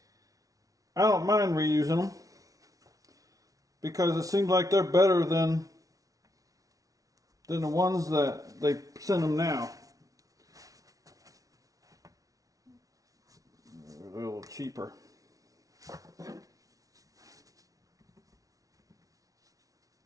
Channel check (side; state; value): left; late; 0.17 ms